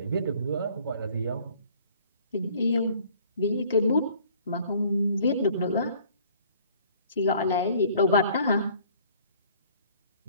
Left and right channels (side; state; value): both; inverted; correlation -0.55